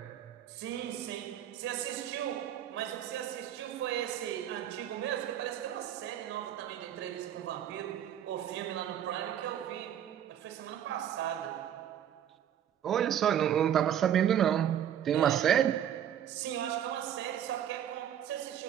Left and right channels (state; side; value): quieter; left; 10.1 dB